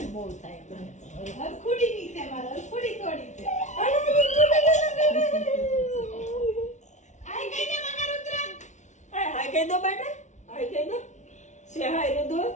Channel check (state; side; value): late; right; 0.35 ms